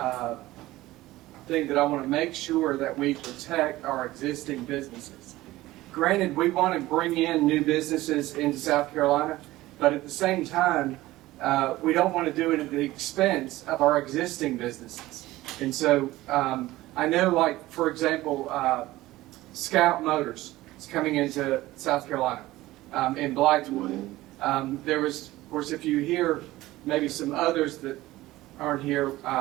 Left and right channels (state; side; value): quieter; left; 17.3 dB